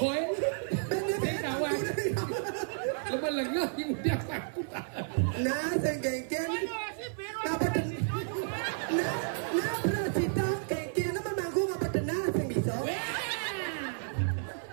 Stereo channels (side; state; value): left; silent; 57 dB below the other